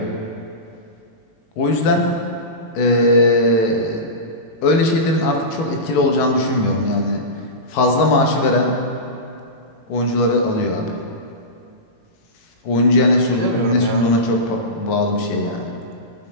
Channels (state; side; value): late; right; 18 ms